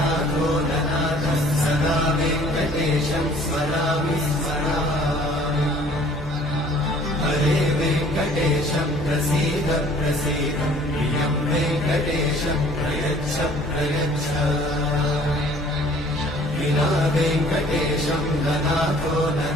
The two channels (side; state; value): both; normal; correlation 0.54